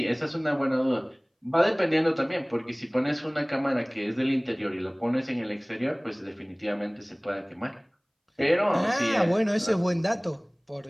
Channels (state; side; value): identical; both; correlation 1.00